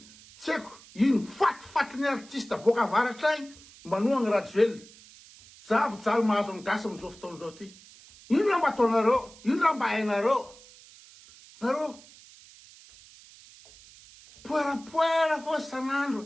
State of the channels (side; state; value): right; noise; hiss, 22 dB below the sound